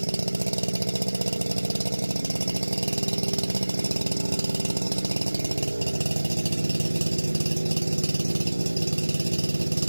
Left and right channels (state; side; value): inverted; both; correlation -1.00